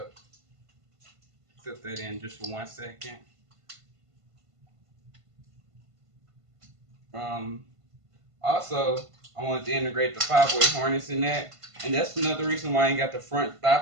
Clip that in just for 1 second. Um, Also, I wanted to integrate the 5-way harness in that, and that's another reason why I ain't got the front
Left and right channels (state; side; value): late; left; 1.5 ms